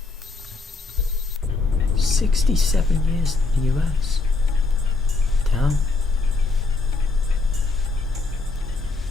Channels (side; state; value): right; quieter; 3.8 dB